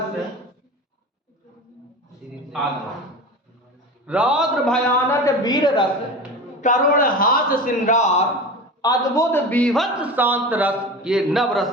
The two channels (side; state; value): both; normal; correlation 0.30